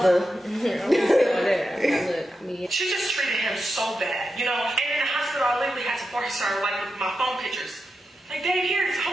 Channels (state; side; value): normal; both; correlation 0.89